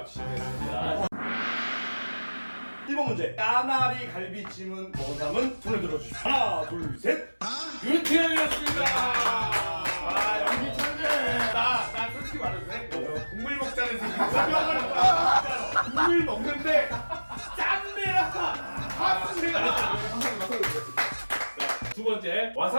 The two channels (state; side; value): inverted; both; correlation -1.00